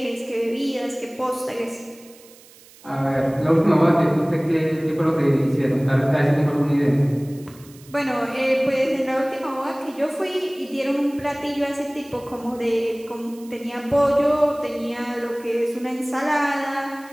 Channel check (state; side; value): noise; right; hiss, 24 dB below the sound